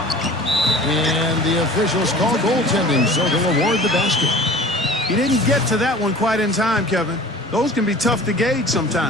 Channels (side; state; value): both; normal; correlation 0.43